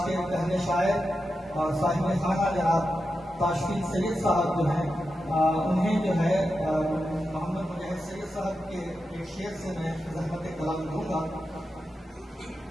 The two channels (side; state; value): both; normal; correlation 0.89